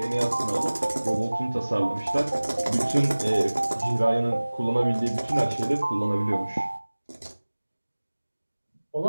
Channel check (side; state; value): both; inverted; correlation -1.00